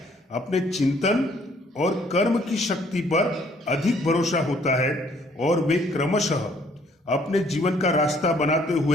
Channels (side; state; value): both; normal; correlation 0.62